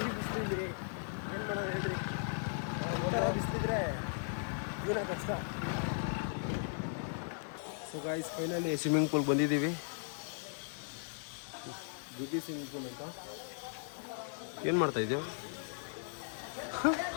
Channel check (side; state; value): right; silent; digital silence